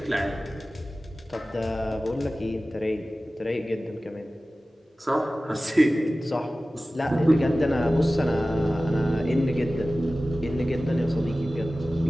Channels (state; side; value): normal; both; correlation 0.96